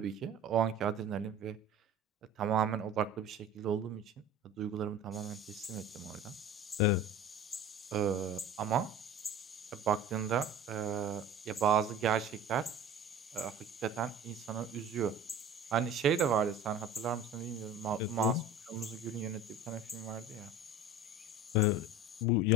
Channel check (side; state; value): both; normal; correlation 0.39